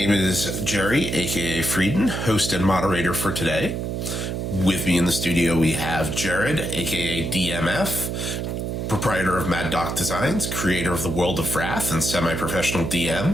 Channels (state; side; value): noise; right; hum, 3 dB below the sound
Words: is Jerry, aka Frieden, host and moderator for today. With me in the studio, we have Jared, aka dm.f, proprietor of Mad Doc Designs, creator of the World of Wrath, and semi-professional DM,